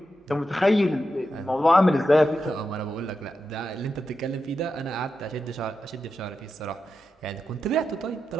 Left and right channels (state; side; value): normal; both; correlation 0.88